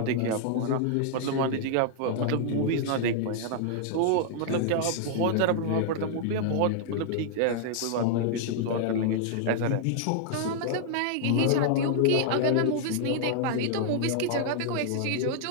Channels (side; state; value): both; different; correlation -0.01